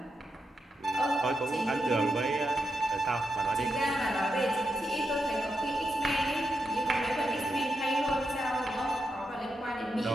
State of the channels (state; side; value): normal; both; correlation 0.85